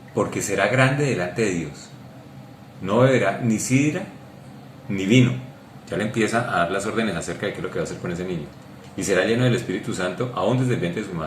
porque será grande delante de Dios, no beberá ni sidra ni vino. Ya le empieza a dar las órdenes acerca de qué es lo que va a hacer con ese niño. Y será lleno del Espíritu Santo aún desde el vientre de su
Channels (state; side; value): identical; both; correlation 1.00